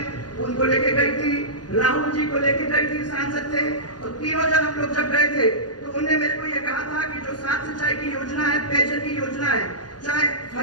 उनको लेके गई थी, राहुल जी को लेके गई थी, सांसद थे, और तीनों जन हम लोग जब गए थे तो उन्होंने मेरे को ये कहा था कि जो 7 सिंचाई की योजना है, पेयजल की योजना है, चाहे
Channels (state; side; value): late; right; 0.69 ms